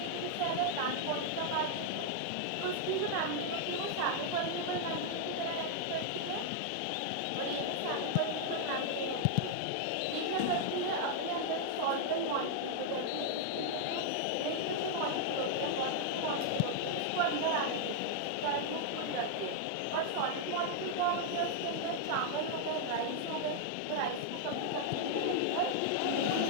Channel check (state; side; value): different; both; correlation 0.00